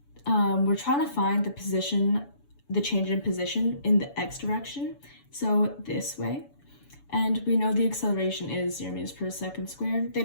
We're trying to find the change in position in the x direction, so this way. And we know the acceleration is 0 meters per second squared. They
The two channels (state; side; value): late; right; 7.0 ms